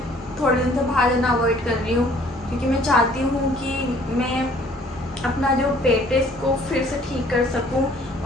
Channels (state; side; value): normal; both; correlation 0.57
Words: थोड़े दिन से बाहर जाना अवॉइड कर रही हूँ, क्योंकि मैं चाहती हूँ कि मैं अपना जो पेट है इसको फिर से ठीक कर सकूँ।